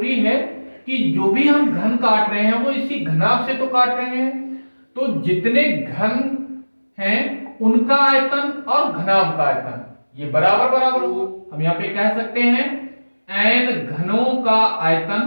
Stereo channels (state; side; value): inverted; both; correlation -1.00